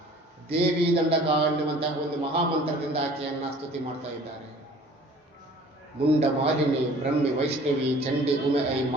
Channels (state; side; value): normal; both; correlation 0.49